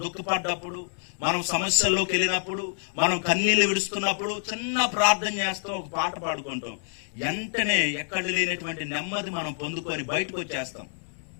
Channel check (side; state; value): right; silent; 60 dB below the other